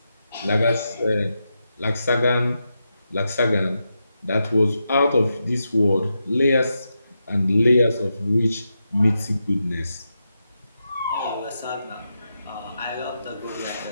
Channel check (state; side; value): inverted; both; correlation -0.87